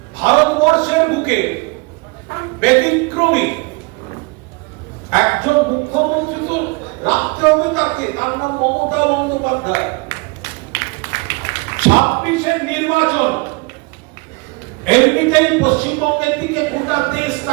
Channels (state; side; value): quieter; left; 27.8 dB